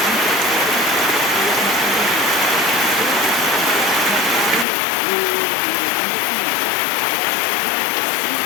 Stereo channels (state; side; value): drops out; right; at 4.7 s